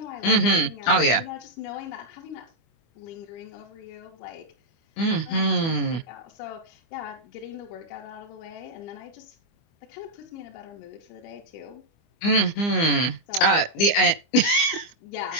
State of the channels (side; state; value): right; late; 25 ms